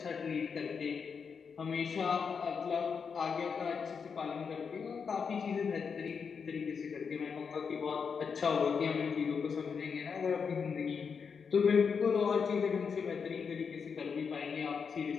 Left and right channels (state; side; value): quieter; right; 6.0 dB